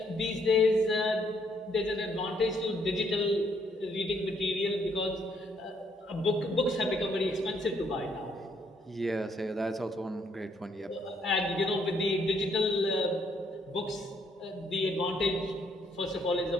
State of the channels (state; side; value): normal; both; correlation 0.70